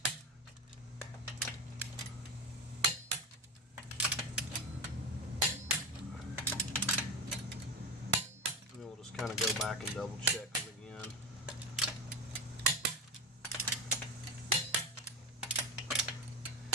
And then we'll just kind of go back and double check them again.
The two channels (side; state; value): both; normal; correlation 0.20